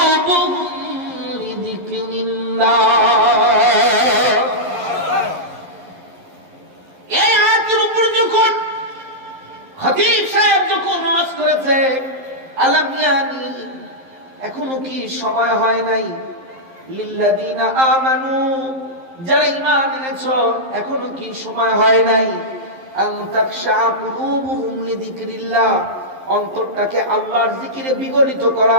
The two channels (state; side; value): late; left; 11 ms